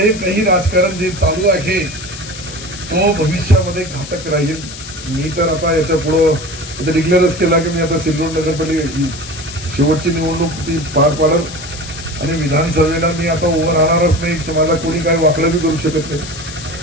काही राजकारण जे चालू आहे तो भविष्यामध्ये घातक राहील. मी तर आता याच्या पुढे डिक्लेअरच केला की मी आता सिल्लोड नगरपालिका शेवटची निवडणूक ती पार पाडत आणि विधानसभेला मी आता उभं राहणारच नाही. तुम्हाला कोणी काही वाकडं बी करू शकत नाही.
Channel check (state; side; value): noise; left; hiss, 13 dB below the sound